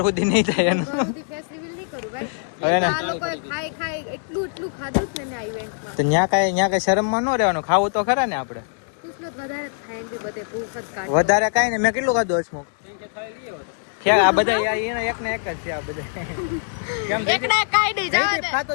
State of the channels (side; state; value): right; silent; digital silence